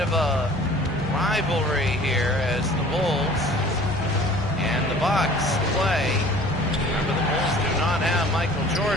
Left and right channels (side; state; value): both; normal; correlation 0.48